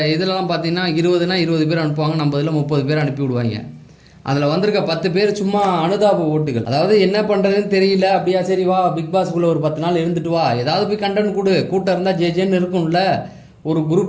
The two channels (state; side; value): identical; both; correlation 1.00